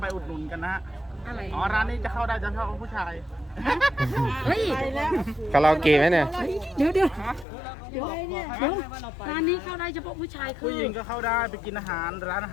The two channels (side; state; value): right; drops out; at 7.5 s